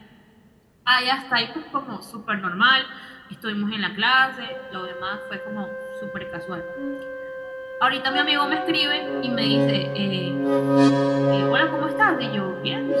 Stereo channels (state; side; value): identical; both; correlation 1.00